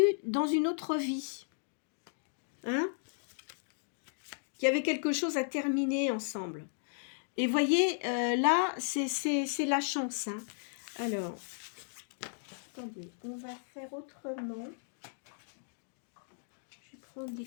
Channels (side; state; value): right; silent; digital silence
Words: dans une autre vie. Hein? Qui avait quelque chose à terminer ensemble. Et voyez, là, c'est la chance. Hein? Alors, attendez, on va faire autrement. Je vais prendre des